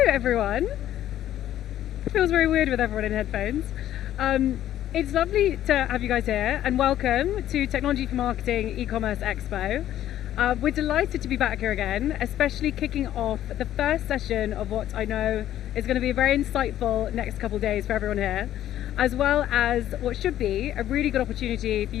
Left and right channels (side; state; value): right; quieter; 12.2 dB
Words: everyone. It feels very weird with everyone in headphones. It's lovely to have you guys here, and welcome to Technology for Marketing E-Commerce Expo. We're delighted to be back here again, especially kicking off the first session of what I know is going to be a very insightful next couple of days for everyone here, as well as what should be a really good opportunity for